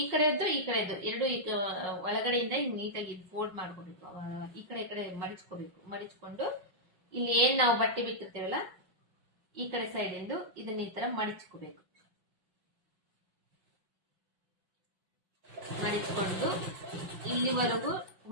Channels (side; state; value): left; late; 5.4 ms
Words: ಈ ಕಡೆದ್ದು ಈ ಕಡೆದ್ದು ಎರಡು ಒಳಗಡೆಯಿಂದ ಹಿಂಗ್ ನೀಟಾಗಿ ಫೋಲ್ಡ್ ಮಾಡ್ಕೋಬೇಕು. ಈ ಕಡೆ ಮಡಿಚ್ಕೋಬೇಕು. ಮಡಿಚ್ಕೊಂಡು ಇಲ್ಲಿ ಏನ್ ನಾವು ಬಟ್ಟೆ ಬಿಟ್ಟಿರ್ತೇವಲ್ಲ ಈ ಕಡೆ ಸೈಡ್ ಇಂದು ಇದನ್ನ ಈ ತರ ಮಡಿಚ್ಕೋಬೇಕು. ಮಡಿಚ್ಕೊಂಡು ಇಲ್ಲಿವರೆಗೂ